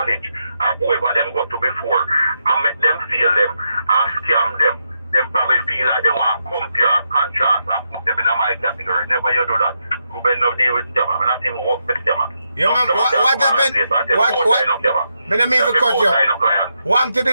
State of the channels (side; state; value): both; inverted; correlation -0.83